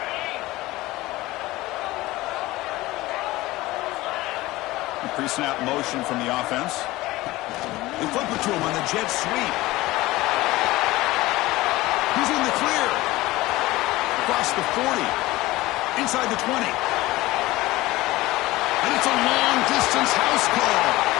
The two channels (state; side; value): quieter; right; 18.7 dB